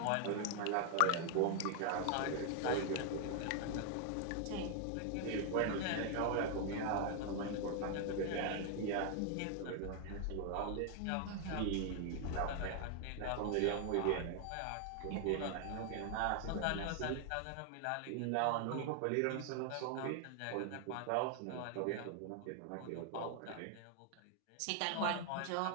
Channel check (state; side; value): different; both; correlation 0.00